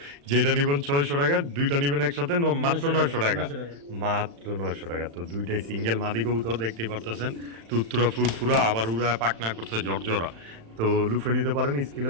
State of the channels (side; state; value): left; late; 35 ms